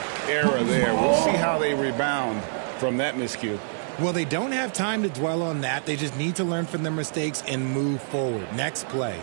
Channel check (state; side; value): silent; left; digital silence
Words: error there. We'll see how they rebound from that miscue. Well, they don't have time to dwell on that. They just need to learn from their mistakes and move forward. Next play.